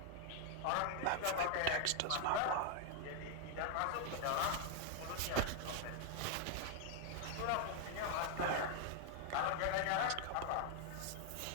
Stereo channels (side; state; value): both; different; correlation 0.00